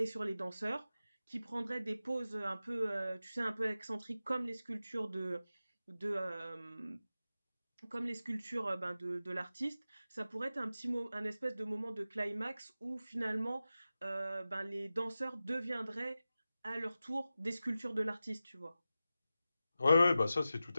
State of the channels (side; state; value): both; inverted; correlation -0.94